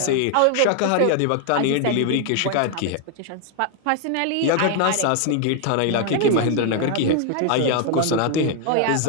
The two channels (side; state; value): both; different; correlation 0.00